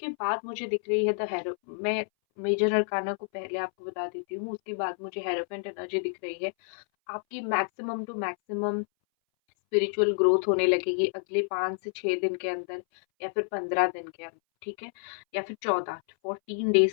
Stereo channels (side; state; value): right; silent; 59 dB below the other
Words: बाद मुझे दिख रही है द हैरो मैं मेजर अरकाना को पहले आपको बता देती हूँ, उसके बाद मुझे हेरोफेंट एनर्जी दिख रही है। आपकी maximum to maximum spiritual growth होने लगेगी अगले 5 से 6 दिन के अंदर या फिर 15 दिन के अंदर, ठीक है? या फिर 14 डेज़